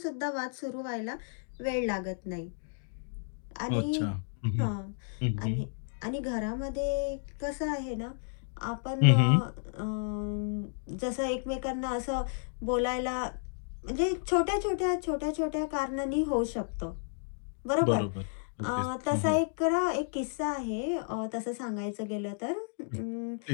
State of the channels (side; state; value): right; silent; digital silence